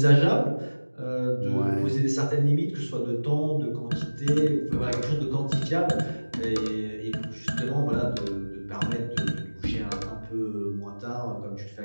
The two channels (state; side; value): inverted; both; correlation -1.00